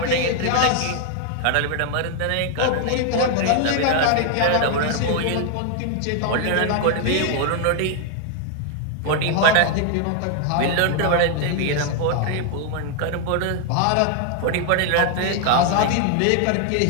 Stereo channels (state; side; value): different; both; correlation 0.00